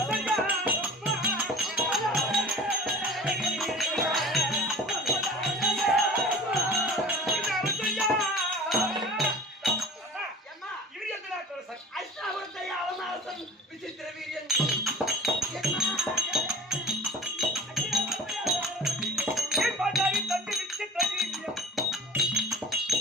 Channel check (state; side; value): normal; both; correlation 0.41